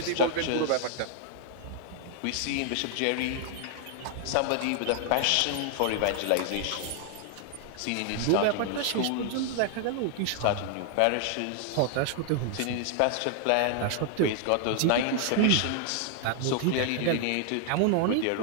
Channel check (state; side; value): different; both; correlation 0.00